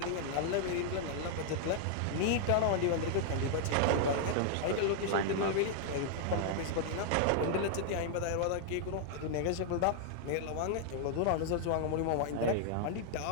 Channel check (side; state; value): both; different; correlation 0.00